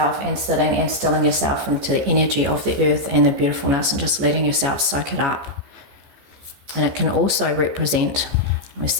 and sitting and stilling yourself into the energy of the earth and the beautifulness, and just letting yourself soak it up. And it can also represent, we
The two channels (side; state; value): left; late; 14 ms